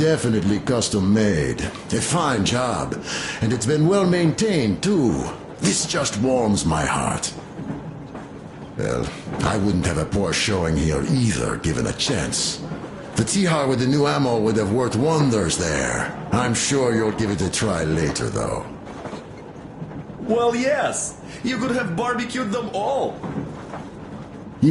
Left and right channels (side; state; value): both; identical; correlation 1.00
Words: custom-made. A fine job. And it's been well maintained, too. This just warms my heart. Well, I wouldn't have a poor showing here either, given a chance. The Tihar with the new ammo would have worked wonders there. I'm sure you'll give it a try later, though. Well, yes. You could have barbecued them all.